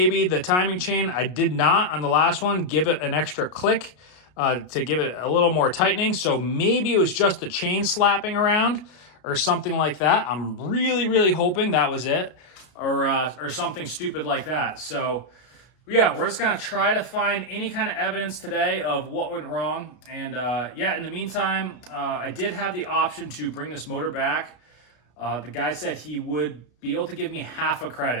the timing chain, I did not on the last one, give it an extra click to give it a little more tightening. So maybe it was just the chain slapping around or something like that. I'm really hoping that was it, or something stupid like that. So yeah, we're just gonna try to find any kind of evidence today of what went wrong. And yeah, in the meantime, I did have the option to bring this motor back. The guy said he would be able to give me half a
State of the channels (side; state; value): right; late; 33 ms